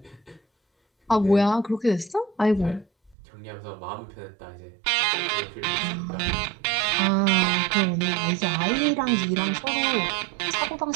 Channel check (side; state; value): left; drops out; at 3.2 s